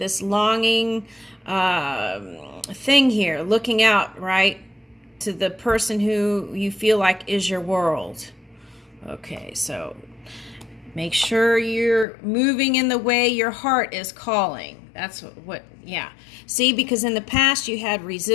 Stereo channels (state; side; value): drops out; right; at 12.1 s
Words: longing thing here, looking out, right, to the person who you feel like is your world. Okay, so make sure you're moving in the way your heart is calling. That's what yeah. See, because in the past you had